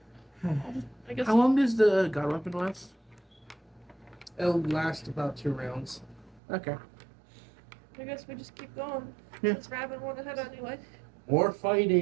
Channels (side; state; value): left; drops out; at 6.4 s